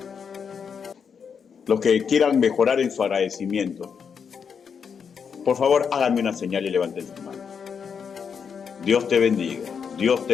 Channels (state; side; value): quieter; right; 6.6 dB